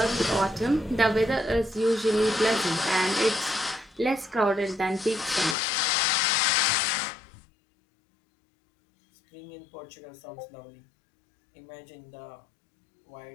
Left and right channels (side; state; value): right; drops out; at 5.6 s